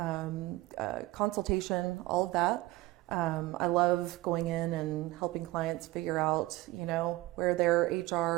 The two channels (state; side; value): quieter; left; 18.9 dB